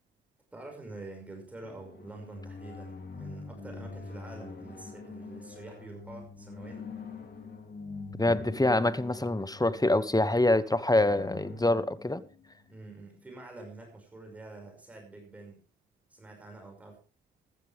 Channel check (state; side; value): normal; both; correlation 0.78